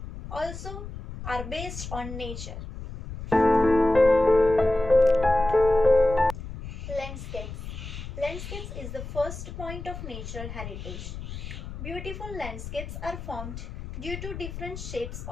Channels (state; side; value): noise; left; rumble, 9 dB below the sound